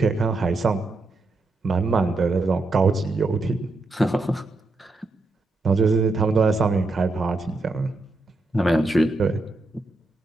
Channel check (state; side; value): quieter; left; 3.1 dB